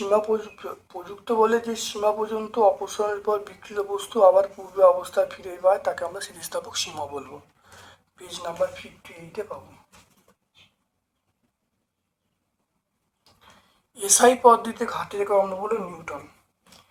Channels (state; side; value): identical; both; correlation 1.00